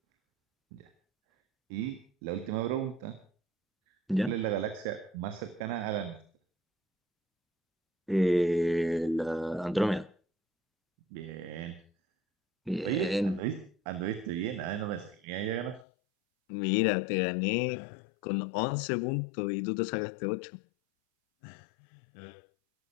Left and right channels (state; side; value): drops out; right; at 15.9 s